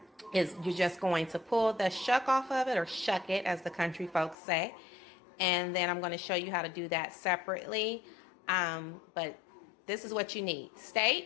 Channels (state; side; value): drops out; right; at 4.4 s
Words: is you're just going to pull the shuck off of it, or shuck it as the country folks say. And then I'm going to show you how to do that separately. But this is what you need: